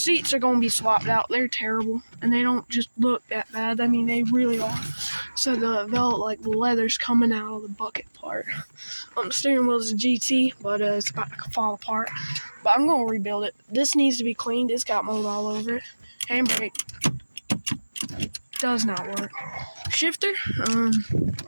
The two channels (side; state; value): both; inverted; correlation -1.00